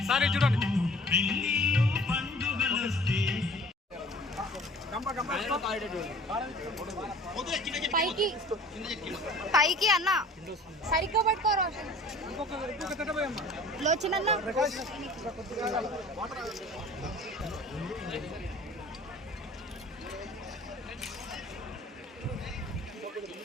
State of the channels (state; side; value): normal; both; correlation 0.48